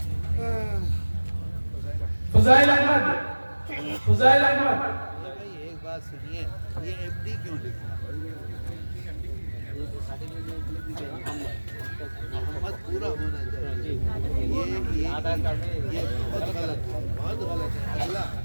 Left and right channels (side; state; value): both; inverted; correlation -1.00